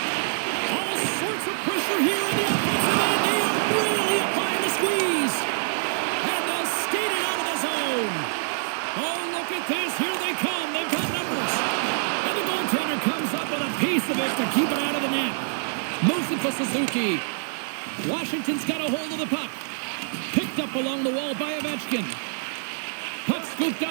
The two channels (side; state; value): left; silent; 61 dB below the other